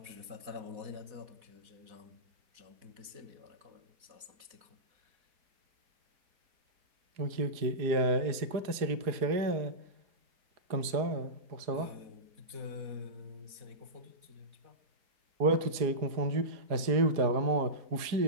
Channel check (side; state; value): left; late; 4.8 ms